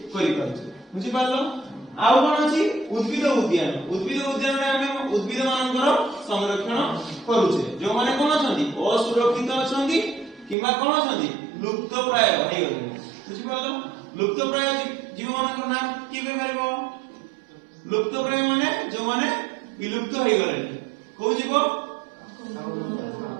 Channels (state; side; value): drops out; left; at 10.6 s